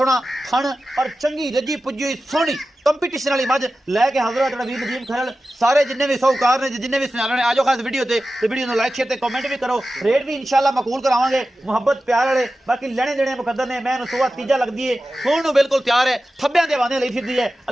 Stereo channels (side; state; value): both; normal; correlation 0.94